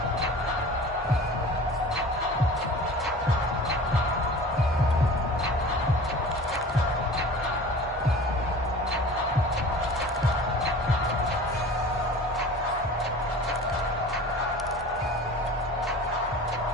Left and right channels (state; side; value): normal; both; correlation 0.40